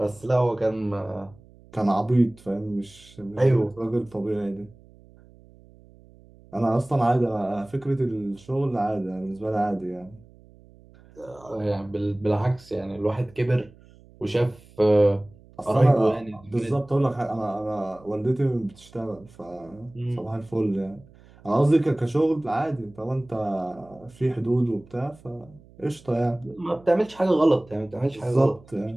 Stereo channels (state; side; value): noise; right; hum, 25 dB below the sound